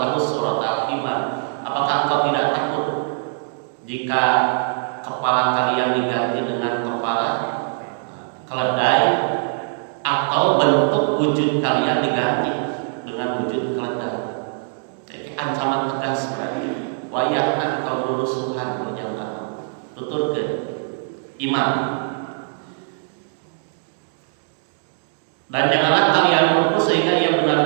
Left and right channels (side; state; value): left; silent; digital silence